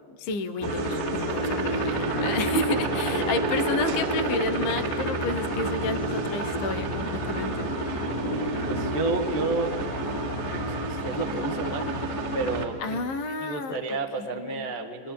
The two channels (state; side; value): late; right; 15 ms